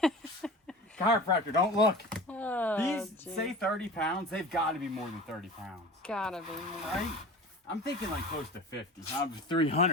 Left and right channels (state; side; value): normal; both; correlation 0.36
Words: Chiropractor, don't look. Oh, these geez. say 30 pounds. They've got to be more than 30 pounds. Gotta be more. Right? I'm thinking like close to 50.